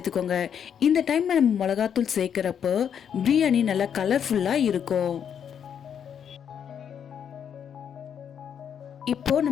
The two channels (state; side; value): quieter; right; 8.2 dB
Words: இந்த டைம்ல நம்ம மிளகாத்தூள் சேர்க்கிறப்போ பிரியாணி நல்லா கலர்ஃபுல்லாக இருக்கும். இப்போ